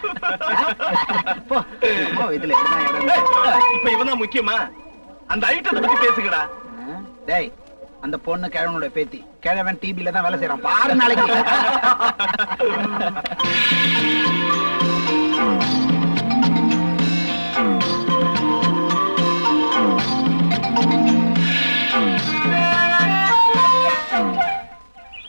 இதுல இப்ப இவன் முக்கியமா? அந்த ஐட்டத்தை பத்தி பேசுங்கடா. டேய், அந்த பொண்ணு கிழவனுடைய பேத்தி. கிழவன் டிபில தான் வேலை செய்யறான் பாரு நாளைக்கு.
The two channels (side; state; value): both; inverted; correlation -1.00